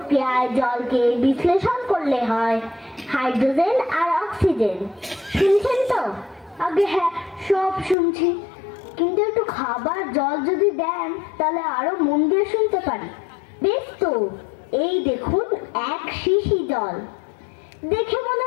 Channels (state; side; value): drops out; right; at 8.0 s